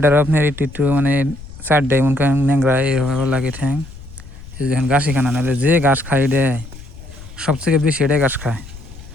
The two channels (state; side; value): noise; left; rumble, 16 dB below the sound